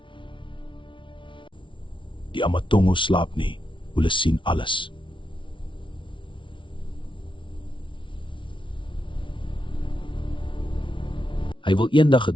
Die Amatongo slaap nie, hulle sien alles. Hy wil eendag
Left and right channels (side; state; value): right; late; 0.24 ms